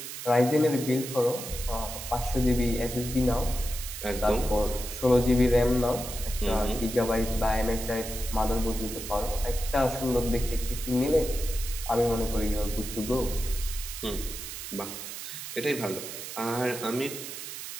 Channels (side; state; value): right; noise; hiss, 9 dB below the sound